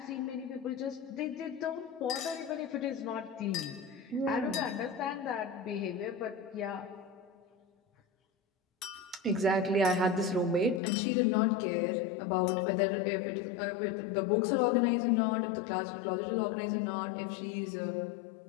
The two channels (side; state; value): right; drops out; at 10.8 s